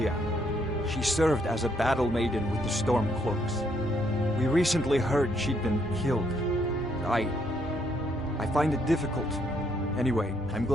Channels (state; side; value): normal; both; correlation 0.72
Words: She served as a battle maiden with the Stormcloaks. We recently heard she'd been killed. I find it difficult. Anyway, I'm